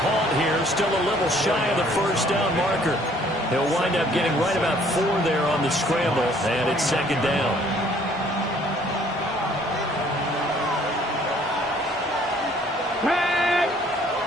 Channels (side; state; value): both; normal; correlation 0.60